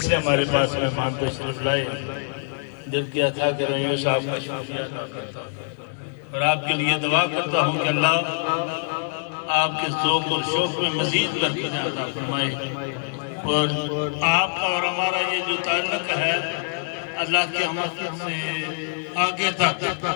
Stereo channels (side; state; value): right; silent; digital silence